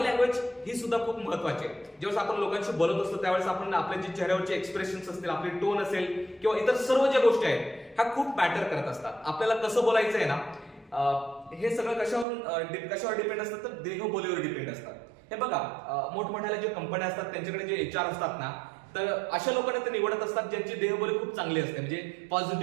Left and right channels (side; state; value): left; drops out; at 12.2 s